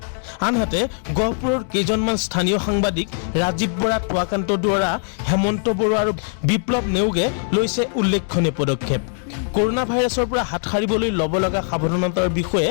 আনহাতে গহপুৰৰ কেইজনমান স্থানীয় সাংবাদিক ৰাজীৱ বৰা, টুৱাকান্ত দুৱৰা, হেমন্ত বৰুৱা আৰু বিপ্লৱ নেওগে লৈছে উল্লেখনীয় পদক্ষেপ। কৰোনা ভাইৰাছৰ পৰা হাত সাৰিবলৈ ল'ব লগা সাৱধানতাৰ বিষয়ে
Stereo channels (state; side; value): silent; right; 65 dB below the other